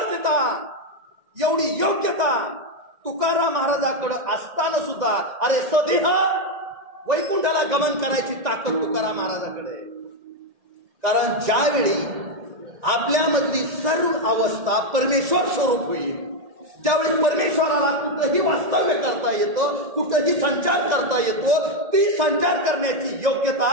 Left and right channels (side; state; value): left; late; 1.9 ms